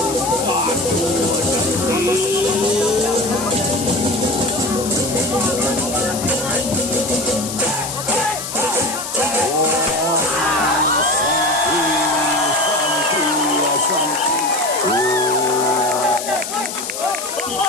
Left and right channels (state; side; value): noise; left; hiss, 7 dB below the sound